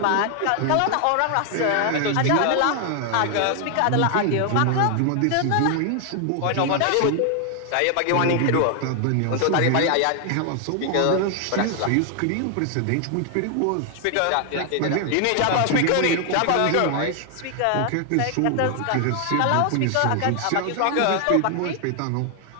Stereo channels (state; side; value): different; both; correlation 0.00